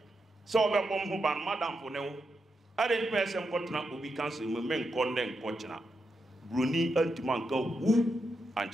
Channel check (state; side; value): normal; both; correlation 0.85